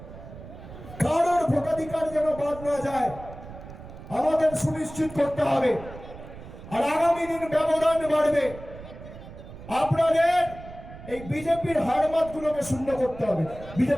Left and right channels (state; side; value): noise; right; rumble, 15 dB below the sound